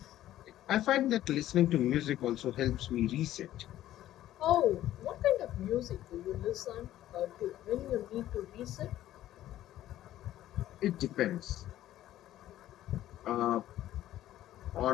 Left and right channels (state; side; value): quieter; right; 13.4 dB